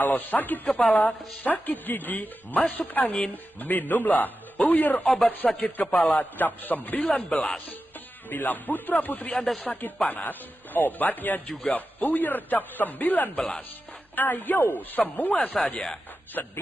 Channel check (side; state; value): both; normal; correlation 0.92